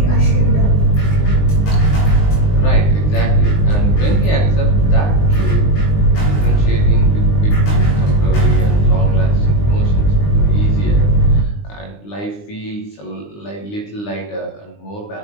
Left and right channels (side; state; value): right; late; 19 ms